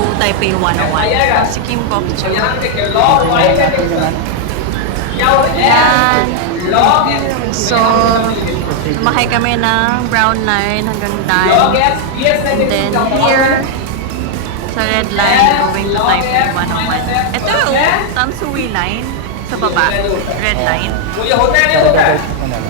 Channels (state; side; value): different; both; correlation 0.00